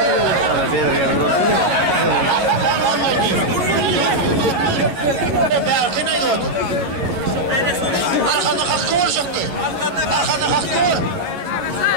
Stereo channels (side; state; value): left; late; 11 ms